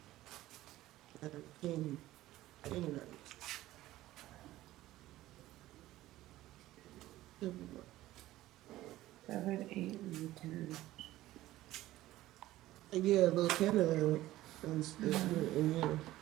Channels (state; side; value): quieter; left; 15.8 dB